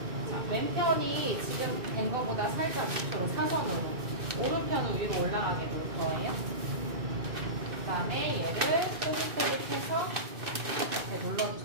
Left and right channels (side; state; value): left; late; 2.6 ms